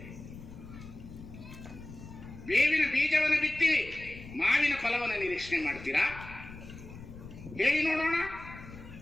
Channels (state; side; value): noise; left; rumble, 15 dB below the sound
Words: ಬೇವಿನ ಬೀಜವನ್ನು ಬಿತ್ತಿ ಮಾವಿನ ಫಲವನ್ನು ನಿರೀಕ್ಷಣೆ ಮಾಡ್ತೀರಾ? ಹೇಳಿ ನೋಡೋಣ.